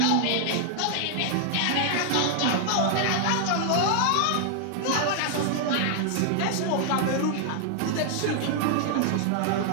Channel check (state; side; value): different; both; correlation 0.00